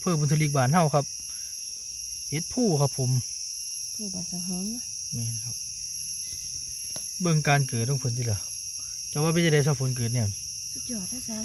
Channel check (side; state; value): both; identical; correlation 1.00